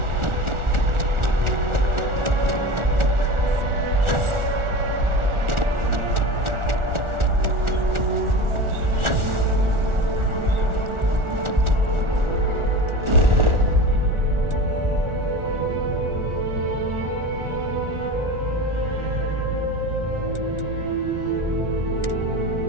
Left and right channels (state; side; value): late; left; 1.4 ms